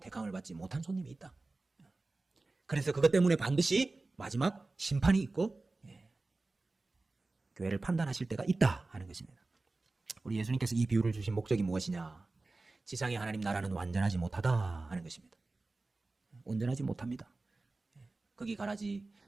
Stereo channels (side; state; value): left; quieter; 3.3 dB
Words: 받지 못한 손님이 있다. 그래서 그것 때문에 반드시 마지막 심판이 있고 교회를 판단하실 때가 있다 하는 것입니다. 우리 예수님께서 이 비유를 주신 목적이 무엇이냐? 지상의 하나님 나라는 완전하지 못하다 하는 것입니다. 온전하지 못합니다. 거기 가라지,